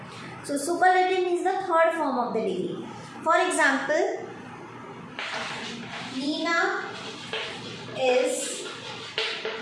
So, superlative means the third form of the degree. For example, Nina is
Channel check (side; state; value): both; identical; correlation 1.00